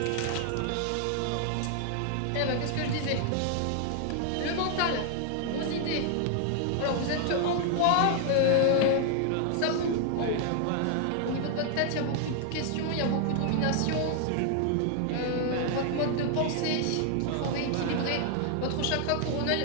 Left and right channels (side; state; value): both; different; correlation 0.00